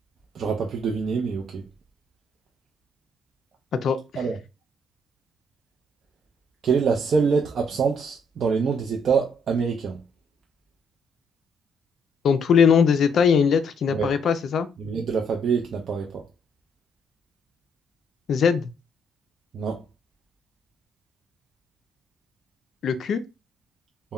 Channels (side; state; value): both; normal; correlation 0.70